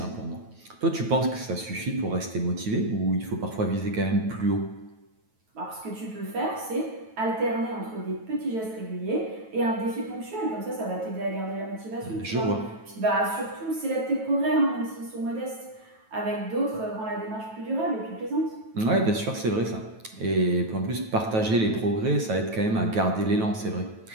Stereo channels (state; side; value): late; left; 9.2 ms